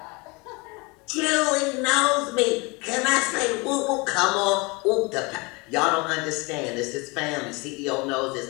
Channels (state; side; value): quieter; right; 27.1 dB